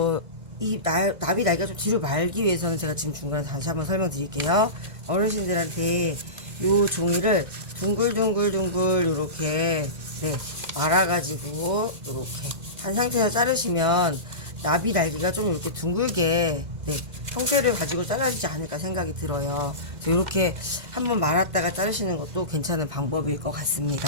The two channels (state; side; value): late; left; 2.0 ms